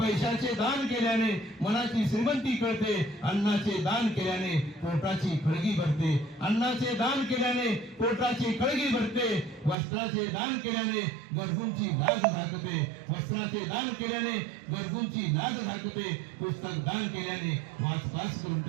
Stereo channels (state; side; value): drops out; left; at 9.8 s